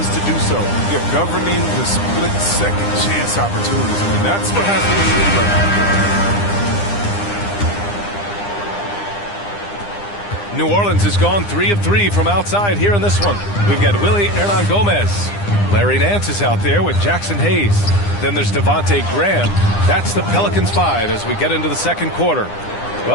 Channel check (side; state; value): right; late; 9.9 ms